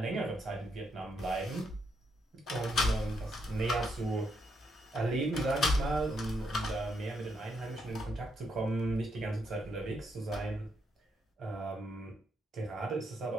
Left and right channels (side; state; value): both; normal; correlation 0.78